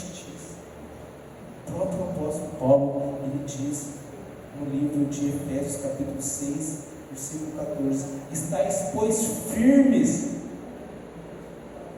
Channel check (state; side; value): identical; both; correlation 1.00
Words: O próprio apóstolo Paulo, ele diz no livro de Efésios capítulo 6, versículo 14: estáis, pois, firmes.